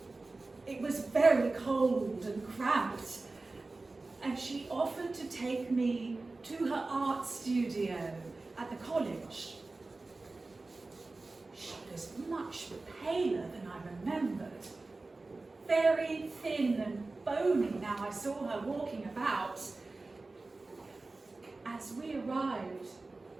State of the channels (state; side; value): quieter; left; 3.4 dB